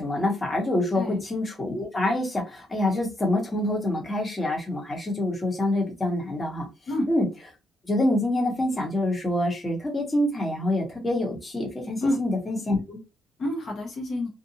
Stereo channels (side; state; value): both; normal; correlation 0.79